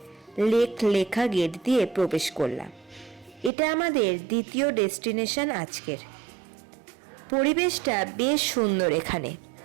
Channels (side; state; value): left; drops out; at 3.5 s